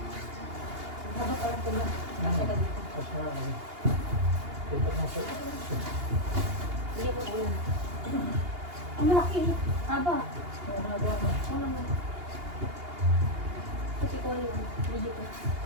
Haba parang pula. Kasi ka dito. Kasi nga ano, dito mo sa Hindi mo alam. Ang malaki. Haba. ano ba? Wala mo. Kasi ko yung video ko.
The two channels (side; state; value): left; late; 2.8 ms